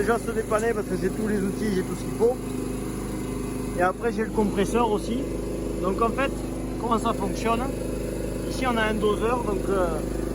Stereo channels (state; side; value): identical; both; correlation 1.00